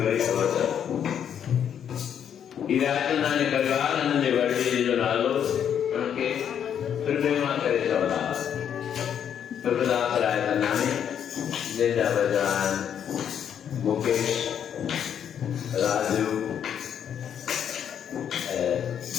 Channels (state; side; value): quieter; right; 8.8 dB